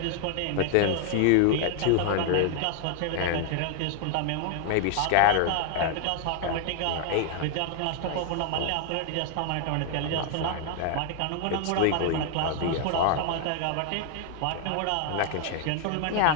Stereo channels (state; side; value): different; both; correlation 0.00